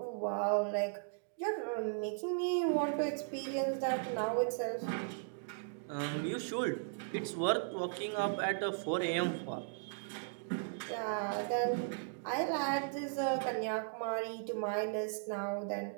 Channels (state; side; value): silent; left; digital silence